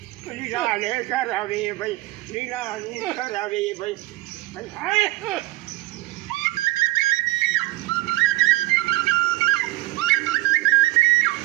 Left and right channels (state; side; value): quieter; left; 20.3 dB